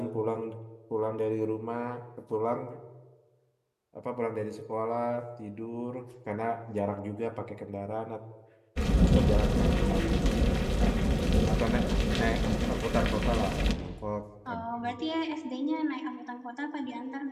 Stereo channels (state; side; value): identical; both; correlation 1.00